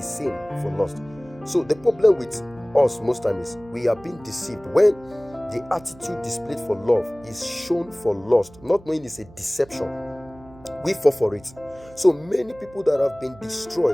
same for lust. So the problem with us most times is we are being deceived when the attitude displayed for love is shown for lust, not knowing it's a deception. We fall for it. So many people that have been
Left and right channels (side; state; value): right; noise; hum, 22 dB below the sound